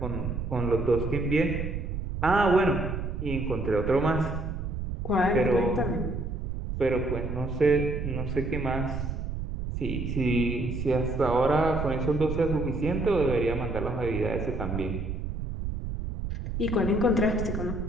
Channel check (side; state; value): right; noise; rumble, 4 dB below the sound